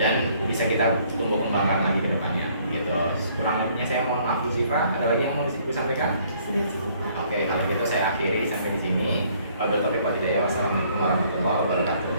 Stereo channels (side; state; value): both; inverted; correlation -0.63